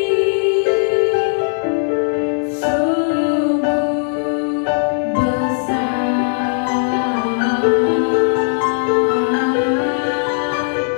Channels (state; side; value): silent; right; digital silence